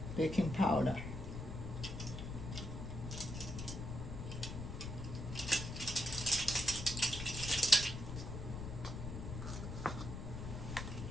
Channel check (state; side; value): noise; left; rumble, 6 dB below the sound